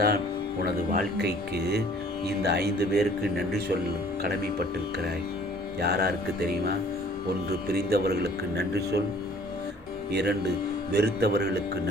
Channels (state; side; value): normal; both; correlation 0.54